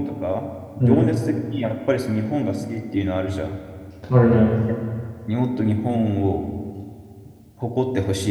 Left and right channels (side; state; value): both; identical; correlation 1.00